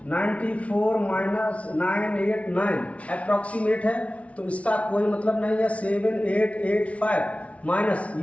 94 माइनस 989 अप्रोक्सीमेट है, तो इसका कोई मतलब नहीं है। 7885 माइनस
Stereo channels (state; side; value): late; right; 0.064 ms